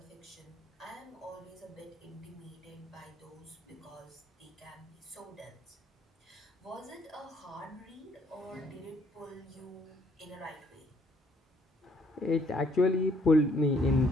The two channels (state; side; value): normal; both; correlation 0.65